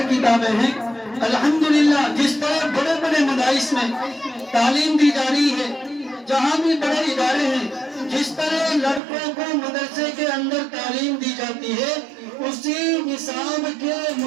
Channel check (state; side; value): drops out; left; at 9.0 s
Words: کتابیں ہیں، الحمدللہ جس طرح بڑے بڑے مدارس میں تعلیم دی جا رہی ہے، جہاں بھی بڑے ادارے ہیں، جس طرح لڑکوں کو مدرسے کے اندر تعلیم دی جاتی ہے، اسی نصاب کے